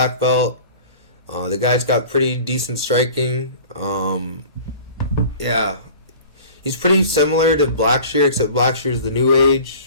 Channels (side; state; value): both; inverted; correlation -0.42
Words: belt. The guy's got pretty decent striking. Yeah. He's pretty similar to Blackshear, except Blackshear's the new